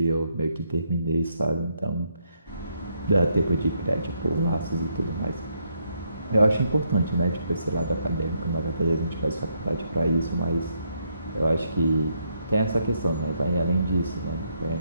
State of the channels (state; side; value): inverted; both; correlation -0.75